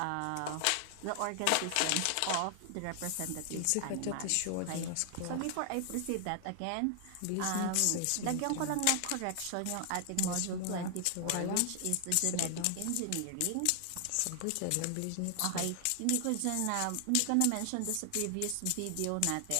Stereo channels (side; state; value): both; different; correlation 0.00